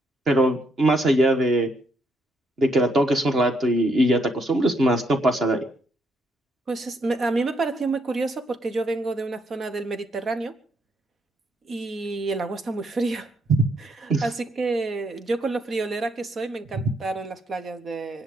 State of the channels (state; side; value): normal; both; correlation 0.75